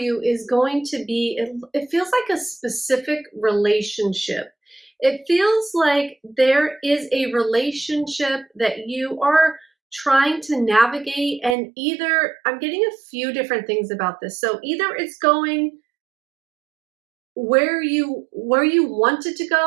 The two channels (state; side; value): drops out; left; at 11.6 s